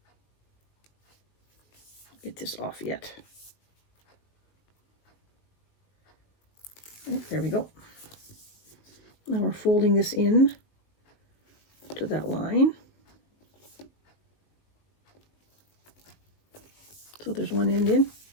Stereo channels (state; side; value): late; right; 19 ms